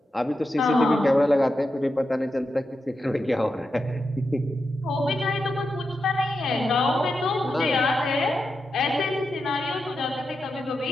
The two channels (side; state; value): both; normal; correlation 0.88